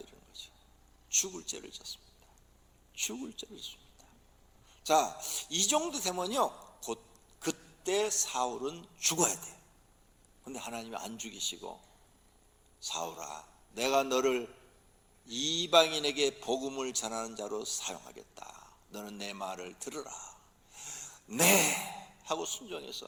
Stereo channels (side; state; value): both; identical; correlation 1.00